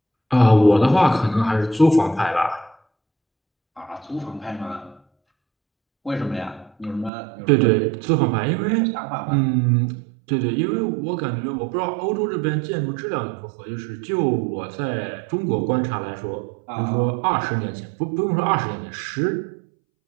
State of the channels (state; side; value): drops out; left; at 7.1 s